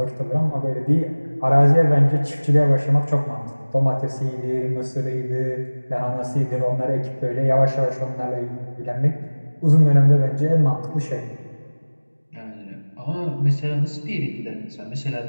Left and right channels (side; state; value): both; inverted; correlation -1.00